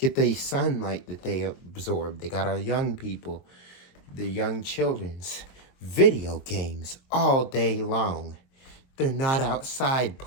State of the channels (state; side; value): late; right; 23 ms